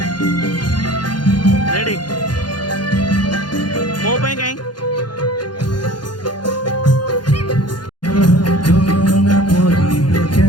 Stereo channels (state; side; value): late; right; 0.71 ms